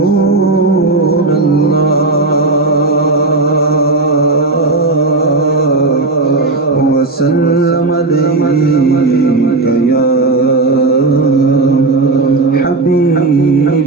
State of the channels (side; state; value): left; quieter; 3.3 dB